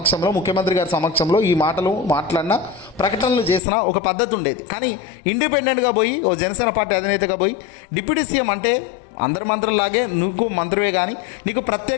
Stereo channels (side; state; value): right; drops out; at 3.6 s